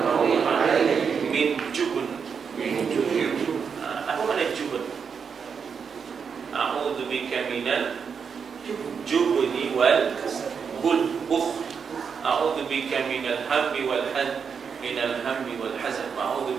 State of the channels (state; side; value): quieter; left; 6.3 dB